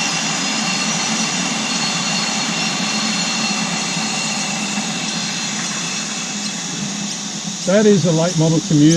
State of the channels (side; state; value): both; identical; correlation 1.00